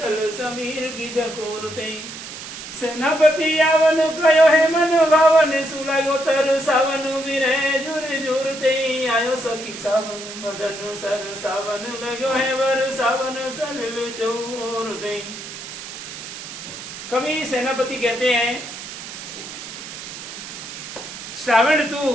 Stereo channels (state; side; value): noise; right; hiss, 11 dB below the sound